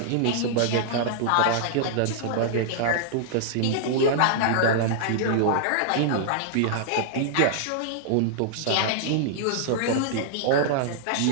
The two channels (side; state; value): both; different; correlation -0.01